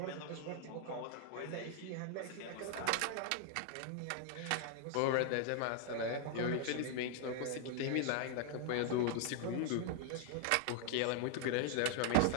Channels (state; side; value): different; both; correlation 0.00